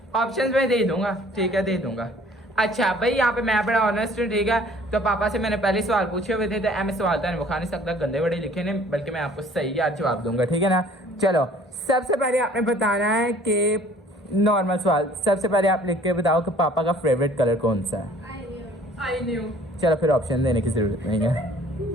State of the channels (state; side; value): normal; both; correlation 0.53